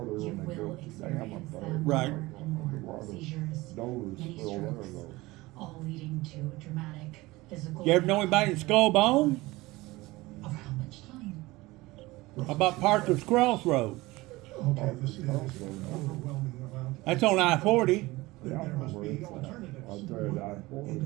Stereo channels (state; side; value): quieter; left; 20.4 dB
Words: when they built the dam up there. Right. Underwater. Dover's still there though. all leading to a dramatic physical. You ever know anybody in Skullbone? Of how much time? About Parker's Crossroads? Okay, this is overwhelming amount. That's on I-40. Yeah, I There know must where be it's at. alternatives. Out there at